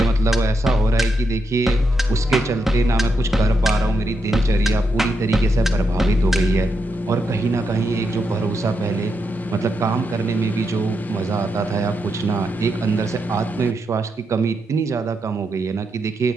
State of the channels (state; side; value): normal; both; correlation 0.83